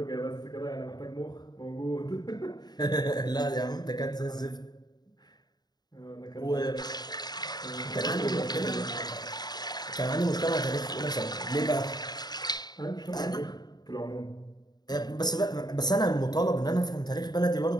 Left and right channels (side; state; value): right; late; 0.20 ms